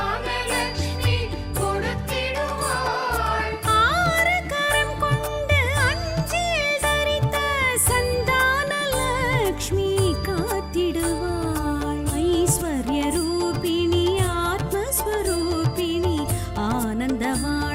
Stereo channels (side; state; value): both; identical; correlation 1.00